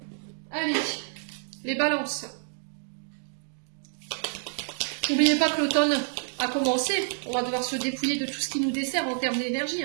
Allez, les balances. N'oubliez pas que l'automne a commencé. On va devoir se dépouiller de tout ce qui nous dessert en termes d'énergie,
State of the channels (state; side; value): silent; left; digital silence